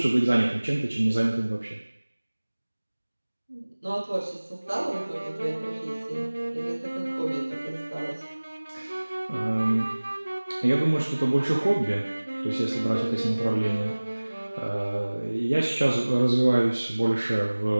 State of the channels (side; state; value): both; inverted; correlation -1.00